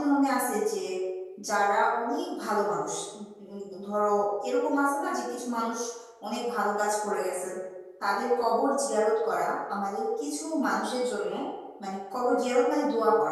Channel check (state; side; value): identical; both; correlation 1.00